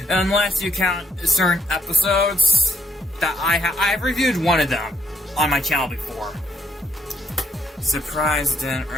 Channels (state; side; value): normal; both; correlation 0.71